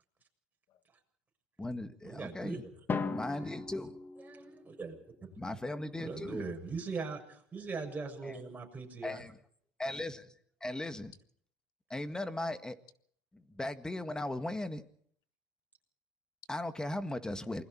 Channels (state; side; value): normal; both; correlation 0.85